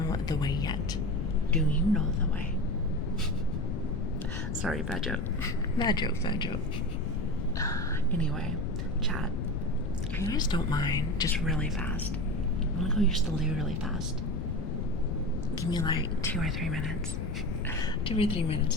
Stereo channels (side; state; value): left; noise; rumble, 2 dB below the sound